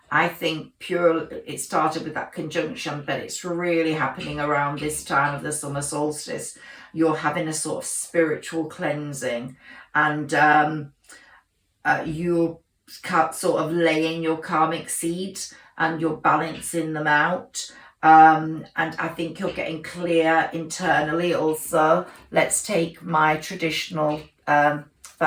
I think, it started with that conjunction, but it's really happening around this time of the summer solstice. You're having a sort of spiritual cleansing, and you're sort of laying your karmic seeds and you're balancing them out. And I think you're getting clear internally also. Let's take my traditional,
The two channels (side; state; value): both; identical; correlation 1.00